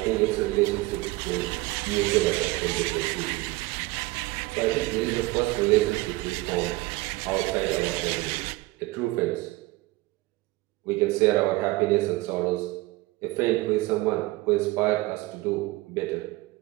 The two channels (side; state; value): left; quieter; 21.0 dB